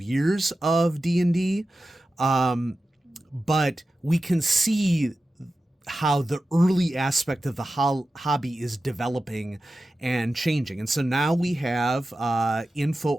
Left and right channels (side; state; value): both; normal; correlation 0.93